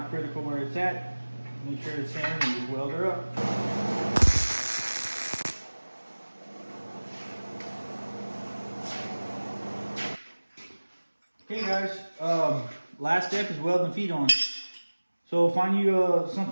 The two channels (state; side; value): inverted; both; correlation -1.00